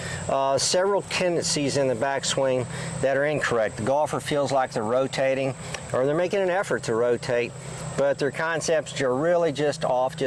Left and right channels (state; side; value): identical; both; correlation 1.00